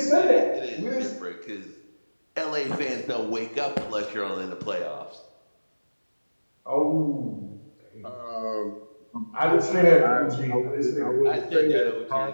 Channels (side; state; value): both; inverted; correlation -1.00